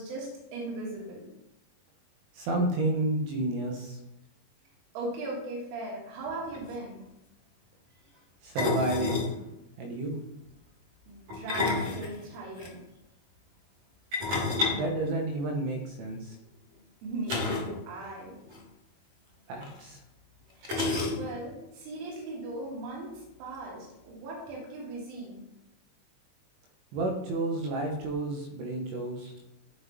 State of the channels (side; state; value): left; late; 21 ms